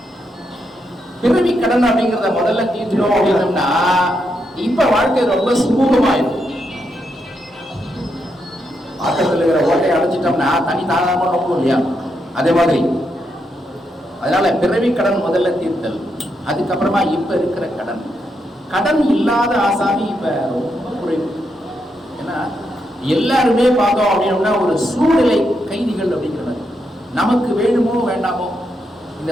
பிறவி கடன் அப்படிங்கிறத முதல்ல தீர்த்தணும் அப்படின்னோம்னா இப்ப வாழ்க்கை ரொம்ப சுமூகமாயிடும். பாத்திரத்தில் இருக்கிற ஓட்டையை அடைச்சிட்டோம்னா தனி தாராளமா நோக்கும் இல்லையா? அதே மாதிரி அதனால பிறவி கடன் முதல்ல தீர்த்தல். அதுக்கப்புறமா இப்ப இருக்கிற கடன், கடன் இல்லாத ஆசாமி இப்ப ரொம்ப குறைவு. ஏன்னா எல்லாருமே பார்த்தோம் அப்படின்னா ஒரு சூழ்நிலை கைதிகள் அப்படிங்கிறது. நமக்கு வேணுமோ வேண்டாமோ இந்த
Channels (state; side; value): normal; both; correlation 0.81